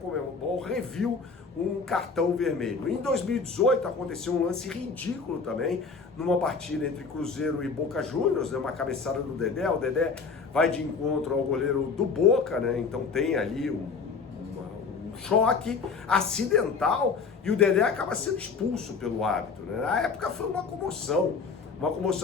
reviu um cartão vermelho. Em 2018 aconteceu um lance ridículo também, numa partida entre Cruzeiro e Boca Juniors, né, uma cabeçada do Dedé. O Dedé vai de encontro ao goleiro do Boca, né, então tem ali um choque acidental e o Dedé acaba sendo expulso pelo árbitro, né? Na época foi uma comoção.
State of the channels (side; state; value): right; quieter; 5.0 dB